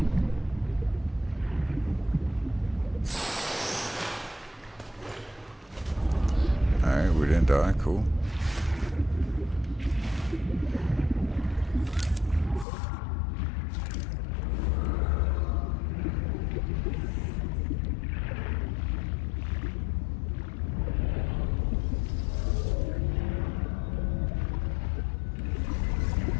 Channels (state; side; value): drops out; right; at 12.7 s